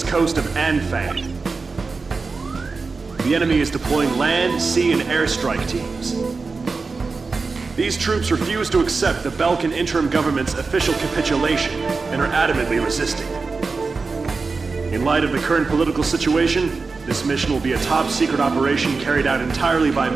coast of Anfang. The enemy is deploying land, sea, and airstrike teams. These troops refuse to accept the Belkan interim government's official capitulation and are adamantly resisting. In light of the current political situation, this mission will be a top-secret operation carried out entirely by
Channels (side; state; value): left; quieter; 4.3 dB